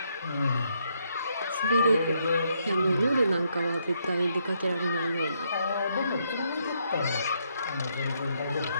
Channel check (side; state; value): both; inverted; correlation -0.75